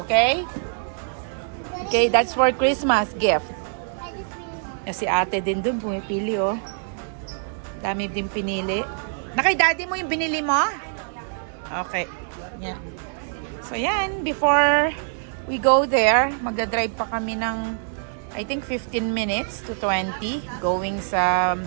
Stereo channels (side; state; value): left; silent; digital silence